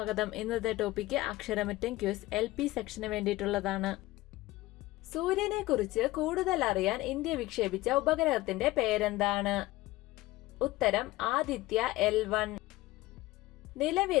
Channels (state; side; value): quieter; right; 18.5 dB